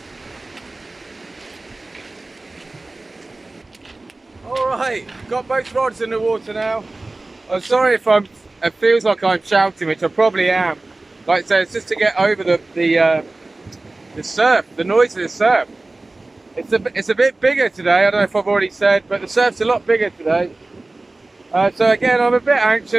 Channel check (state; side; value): quieter; left; 3.1 dB